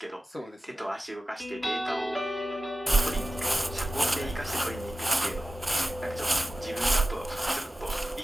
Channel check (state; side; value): normal; both; correlation 0.95